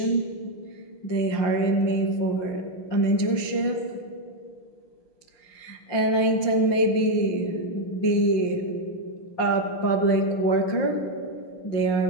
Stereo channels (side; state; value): right; late; 5.7 ms